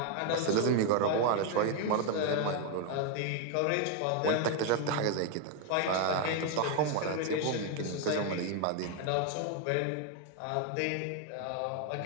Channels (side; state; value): both; different; correlation 0.01